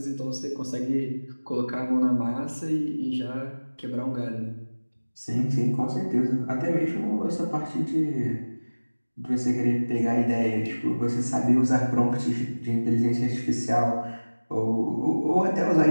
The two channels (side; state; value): both; inverted; correlation -1.00